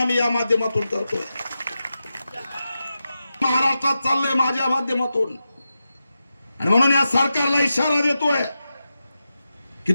या माध्यमातून करतोय. महाराष्ट्रात चाललंय माझ्या माध्यमातून, आणि म्हणून या सरकारला इशारा देतोय की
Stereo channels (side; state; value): both; inverted; correlation -0.91